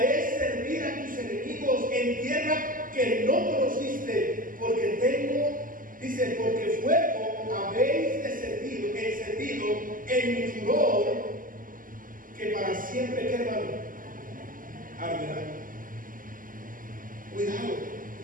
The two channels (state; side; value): late; left; 0.40 ms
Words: servir a tus enemigos en tierra que no conociste, porque tengo, dice, porque fuego habéis encendido en mi furor, que para siempre, ¿qué, hermano? Arderá. Cuidado.